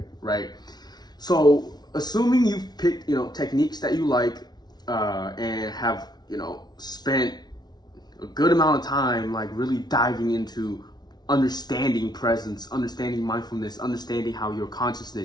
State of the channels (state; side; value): late; right; 0.19 ms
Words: right? So assuming you've picked techniques that you like and have spent a good amount of time like really diving into understanding presence, understanding mindfulness, understanding how your